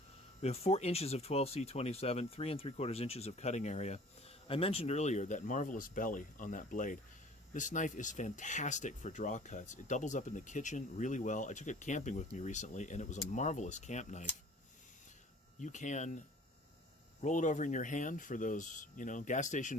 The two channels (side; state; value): both; normal; correlation 0.49